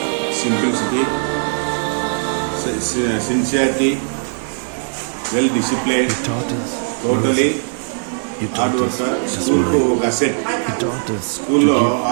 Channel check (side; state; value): left; silent; digital silence